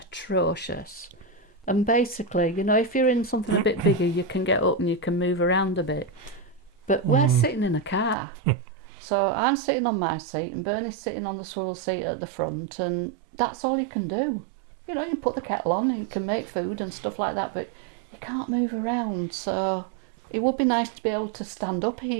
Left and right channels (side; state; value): left; drops out; at 8.2 s